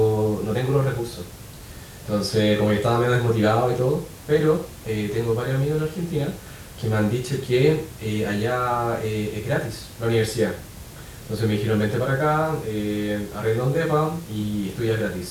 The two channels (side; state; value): both; identical; correlation 1.00